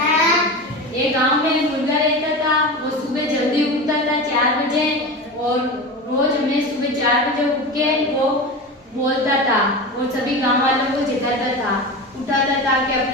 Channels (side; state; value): both; normal; correlation 0.27